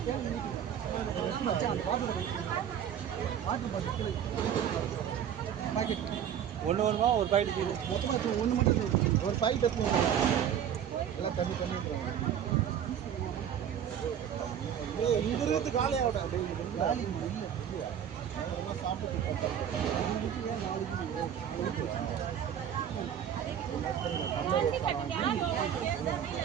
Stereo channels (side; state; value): left; quieter; 9.2 dB